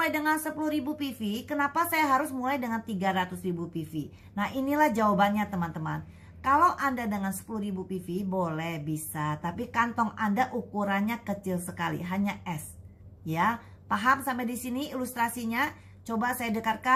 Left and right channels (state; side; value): identical; both; correlation 1.00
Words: dengan 10.000 PV, kenapa saya harus mulai dengan 300.000 PV? Nah, inilah jawabannya teman-teman. Kalau Anda dengan 10.000 PV boleh, bisa, tapi kantong Anda ukurannya kecil sekali, hanya S. Ya, paham sampai di sini ilustrasinya? Coba saya